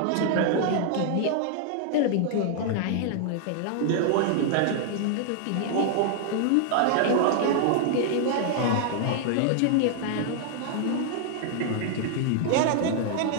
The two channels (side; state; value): both; different; correlation 0.00